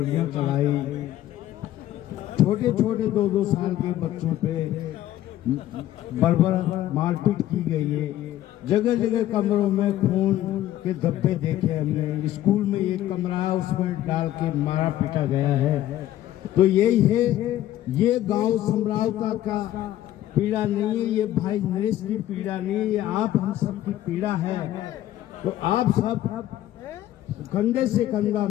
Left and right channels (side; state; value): right; quieter; 13.4 dB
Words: चलाई, छोटे छोटे 2-2 साल के बच्चों पे बर्बर मारपीट की गई है। जगह जगह कमरों में खून के धब्बे देखे हमने। स्कूल में एक कमरा है, उसमें डाल के मारा पीटा गया है। तो यही है, ये गांव समरावता का पीड़ा नहीं है, ये भाई नरेश की पीड़ा नहीं है, ये आप हम सब की पीड़ा है। तो आप सब कंधे से कंधा